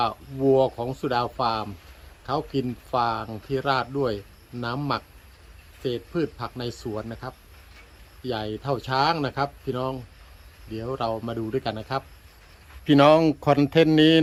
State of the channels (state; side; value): identical; both; correlation 1.00